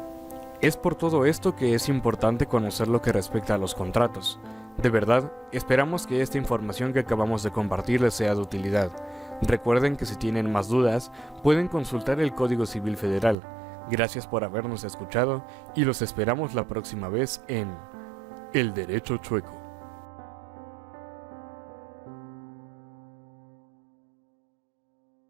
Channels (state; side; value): drops out; left; at 13.4 s